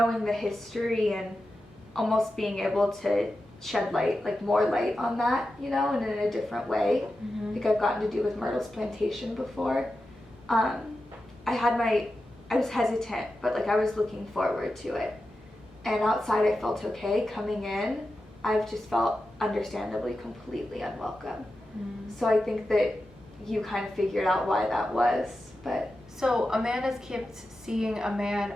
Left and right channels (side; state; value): both; normal; correlation 0.91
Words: the history and almost being able to shed light, like more light on that, you know, and in a different way. Mhm. Like I've gotten to do with Myrtle's plantation before. I was hesitant, but like I was looking forward to it. And outside I felt okay. Coming in, I've just felt understandably completely unwelcome. So I think that you kind of figured out why that was, but So Amanda's kept seeing a man